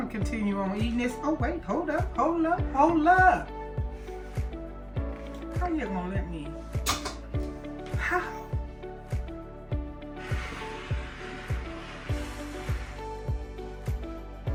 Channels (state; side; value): identical; both; correlation 1.00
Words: continue on eating this. Oh wait, hold up. How you gonna let me? How?